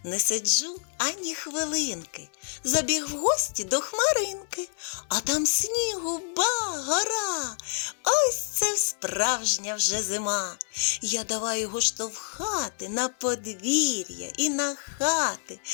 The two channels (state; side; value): silent; right; digital silence